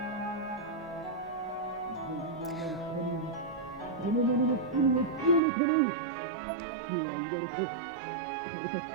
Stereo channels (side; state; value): left; drops out; at 5.4 s